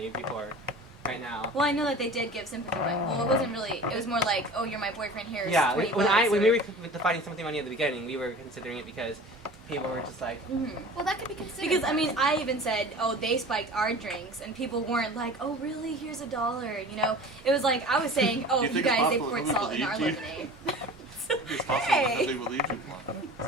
before, right now. Well, I know that they did give sympathy money. Well, it wasn't really. It was more like, oh, you're my boyfriend. Here's Yeah, 20 when bucks, we or- were defining sympathy money at the beginning, we were considering it because people were just like, Mhm. Well, that could be considered. Because I mean, I even said, "Oh, they spiked our drinks," and people weren't like, "Oh, really? Here's $1." You know, it was like I was saying, "Oh, Do you you think it's guys, they possible poured that salt in our believed you? lemonade." It's possible Hey. that they believed you, Juan. Is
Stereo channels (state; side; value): normal; both; correlation 0.40